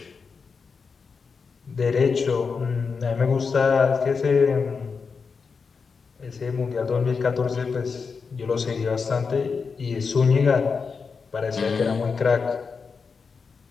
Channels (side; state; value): right; quieter; 5.2 dB